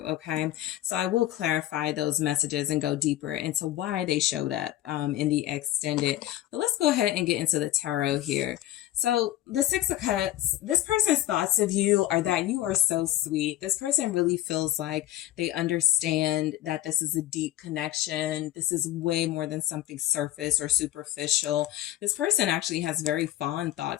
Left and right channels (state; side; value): quieter; right; 14.2 dB